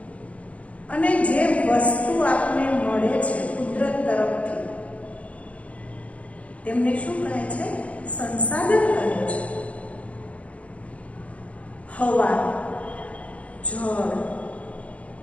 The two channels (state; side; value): late; right; 0.065 ms